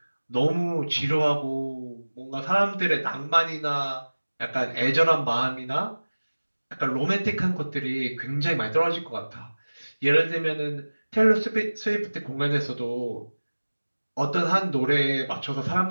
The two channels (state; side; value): inverted; both; correlation -1.00